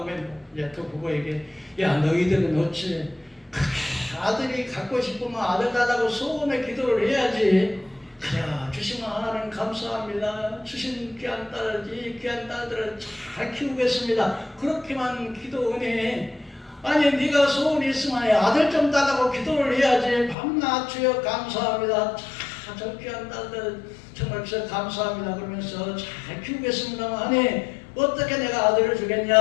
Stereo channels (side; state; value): right; drops out; at 20.4 s